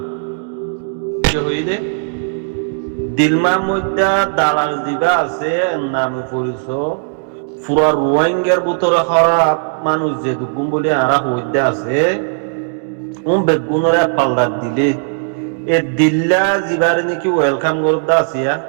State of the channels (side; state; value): left; silent; digital silence